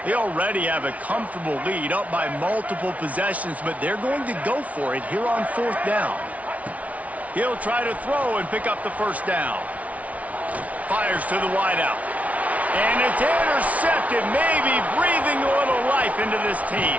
They already have a comfortable lead, up by multiple possessions, but they're going to go for it here on 4th down. He'll try to throw and pick up the first down. Fires to the wideout. And it's intercepted, maybe breathing a little life into this team.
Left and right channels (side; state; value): left; late; 0.068 ms